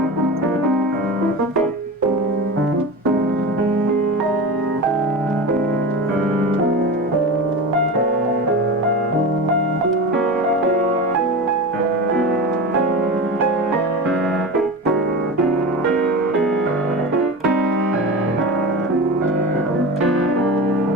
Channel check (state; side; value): normal; both; correlation 0.28